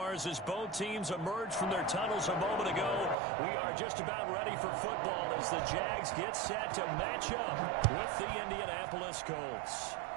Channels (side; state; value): left; drops out; at 3.2 s